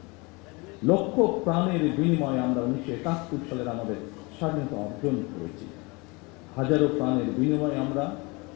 লক্ষ প্রাণের বিনিময়ে আমরা 1971 সালের আমাদের স্বাধীনতা অর্জন করেছি। হাজারো প্রাণের বিনিময়ে আমরা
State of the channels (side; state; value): right; quieter; 27.1 dB